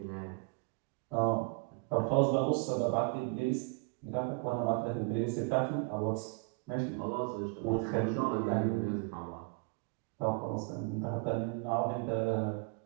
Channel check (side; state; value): left; quieter; 34.2 dB